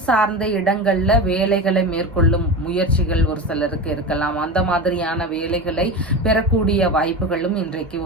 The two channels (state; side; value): normal; both; correlation 0.25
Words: சார்ந்த இடங்கள்ல வேலைகளை மேற்கொள்ளும் முயற்சிகள் ஒரு சிலருக்கு இருக்கலாம். அந்த மாதிரியான வேலைகளை பெறக்கூடிய வாய்ப்புகளும் இன்றைக்கு